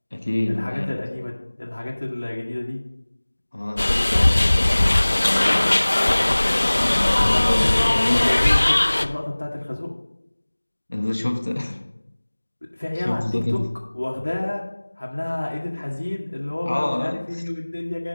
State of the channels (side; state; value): both; inverted; correlation -1.00